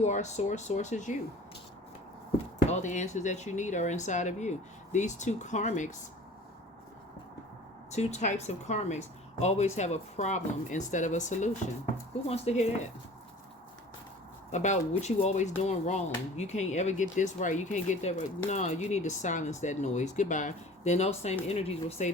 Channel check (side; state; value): both; normal; correlation 0.44